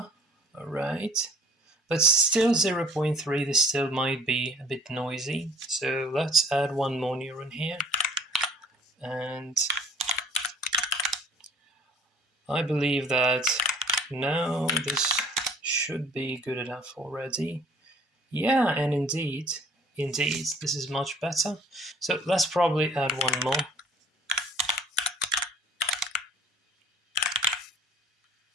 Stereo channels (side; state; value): both; normal; correlation 0.53